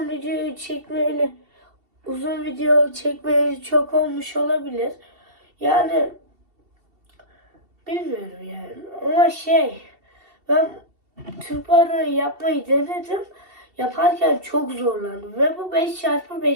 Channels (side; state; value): left; late; 2.7 ms